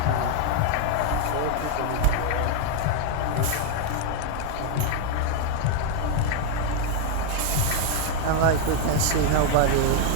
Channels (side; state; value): both; different; correlation 0.01